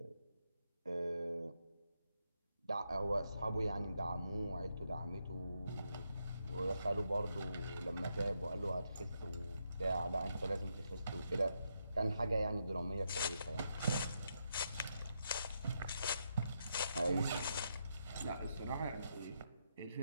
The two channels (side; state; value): both; inverted; correlation -0.81